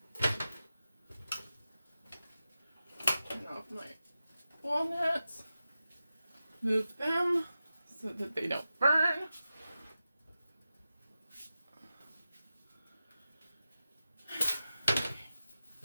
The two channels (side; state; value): both; inverted; correlation -0.93